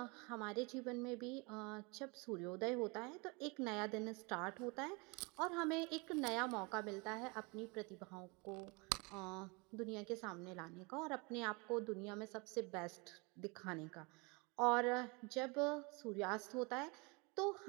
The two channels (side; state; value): left; quieter; 29.2 dB